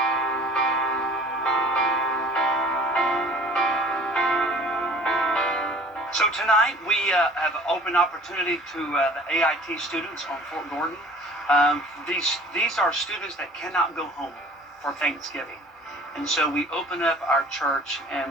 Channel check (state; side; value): normal; both; correlation 0.48